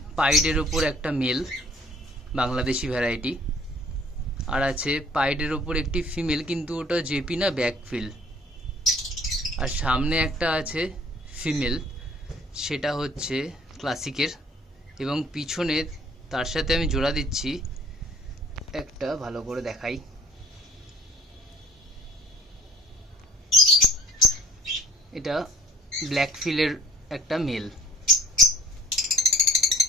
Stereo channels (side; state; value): both; normal; correlation 0.53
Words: পাইডের ওপর একটা মেল বাংলাদেশি ভ্যারাইটি, আর আছে পাইডের ওপর একটি ফিমেল, কিন্তু ওটা জেপি না, ব্যাকফিল। আর সামনে একটা আছে ফিমেল, সেটা হচ্ছে ক্লাসিকের, এবং পিছনে তার সাথে আমি জোড়া দিচ্ছি একটা, ভালো করে দেখাই, এটা ব্ল্যাকফিলের একটা মেল।